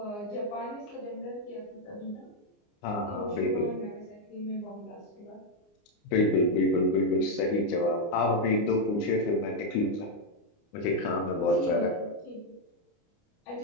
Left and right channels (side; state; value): right; late; 29 ms